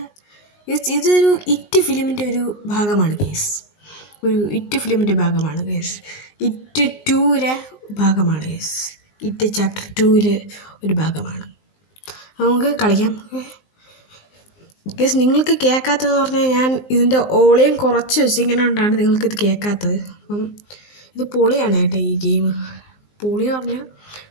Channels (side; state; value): right; late; 19 ms